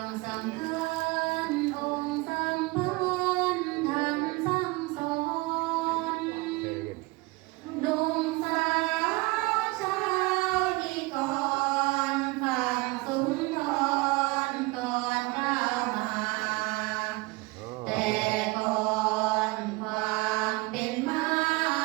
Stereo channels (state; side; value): quieter; left; 23.7 dB